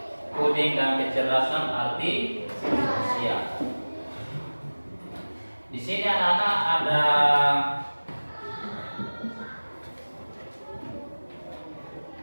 coding dan kecerdasan artifisial. Di sini anak-anak ada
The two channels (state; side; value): inverted; both; correlation -1.00